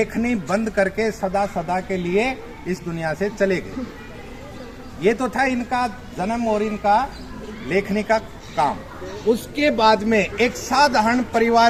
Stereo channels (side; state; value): both; identical; correlation 1.00